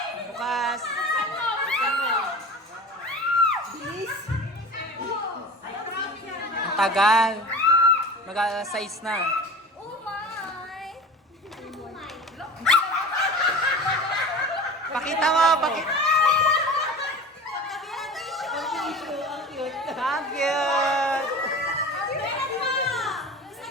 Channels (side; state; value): both; normal; correlation 0.36